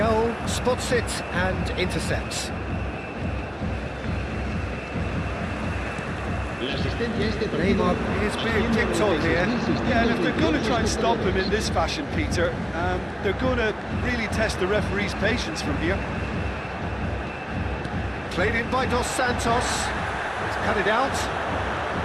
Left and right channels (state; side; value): identical; both; correlation 1.00